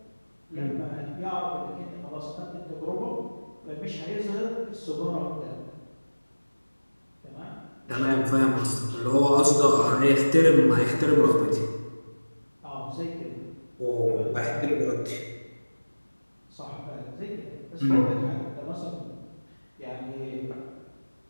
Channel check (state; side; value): inverted; both; correlation -1.00